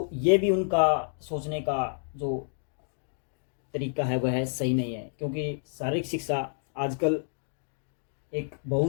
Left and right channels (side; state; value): right; silent; 58 dB below the other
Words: ये भी उनका सोचने का जो तरीका है वह सही नहीं है, क्योंकि शारीरिक शिक्षा आजकल एक